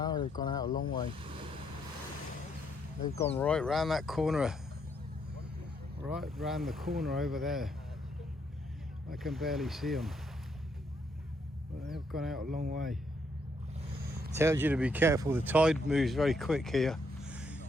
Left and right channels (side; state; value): both; normal; correlation 0.74